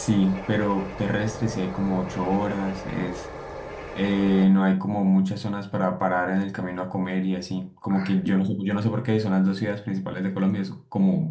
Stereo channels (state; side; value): identical; both; correlation 1.00